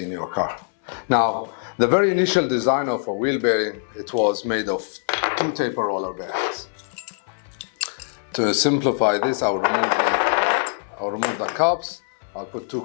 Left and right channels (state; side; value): silent; right; 62 dB below the other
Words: in your car. Now, the very initial design of a wheel bearing, it was made of two taper roller bearings. To simplify this, I'll remove the cups, I'll put two